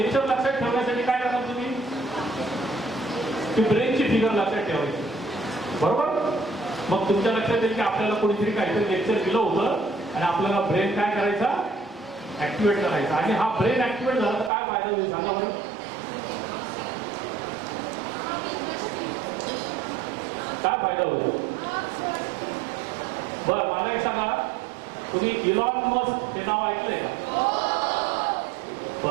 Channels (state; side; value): drops out; left; at 14.5 s